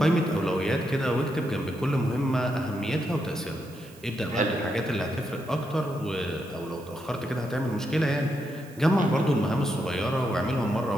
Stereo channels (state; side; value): noise; right; hiss, 24 dB below the sound